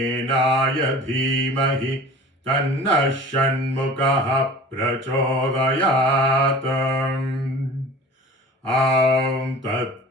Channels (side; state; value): both; normal; correlation 0.41